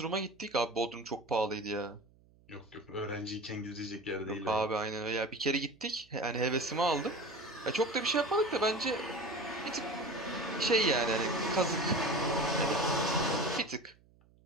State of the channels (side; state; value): right; noise; hum, 29 dB below the sound